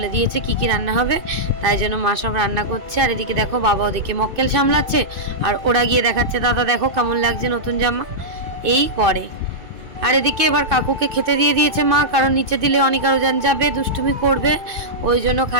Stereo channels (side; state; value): left; late; 2.6 ms